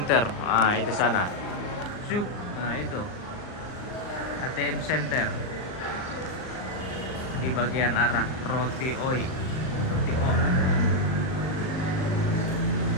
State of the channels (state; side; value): late; right; 39 ms